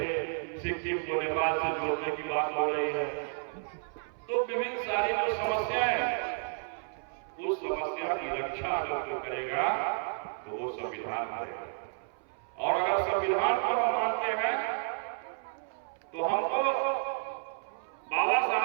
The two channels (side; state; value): left; silent; 57 dB below the other